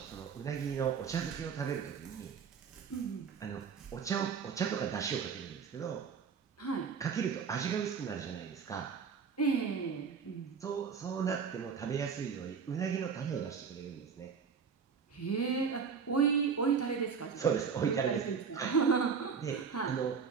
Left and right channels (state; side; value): quieter; left; 6.2 dB